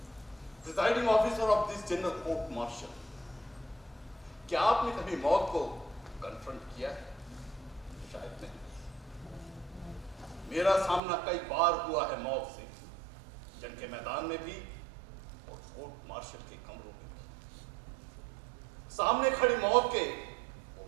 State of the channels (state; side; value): drops out; left; at 11.0 s